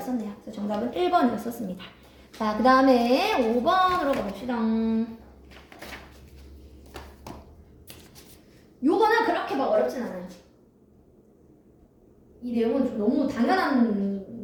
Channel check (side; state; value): both; identical; correlation 1.00